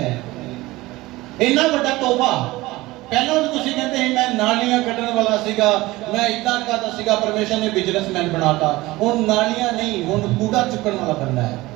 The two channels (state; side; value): quieter; left; 19.5 dB